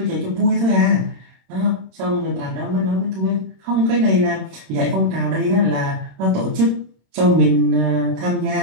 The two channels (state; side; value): late; left; 26 ms